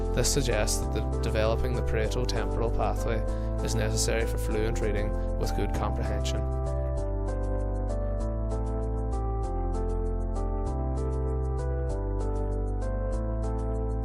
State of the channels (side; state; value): both; identical; correlation 1.00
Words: This suggests that developing the parieto-temporal pathway is necessary for fluent reading with good comprehension.